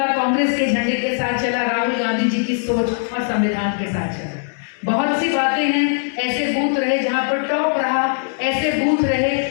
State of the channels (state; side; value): silent; right; digital silence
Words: कांग्रेस के झंडे के साथ चला, राहुल गांधी जी की सोच और संविधान के साथ चला। बहुत सी बातें हैं, ऐसे बूथ रहे जहाँ पर टॉप रहा, ऐसे बूथ रहे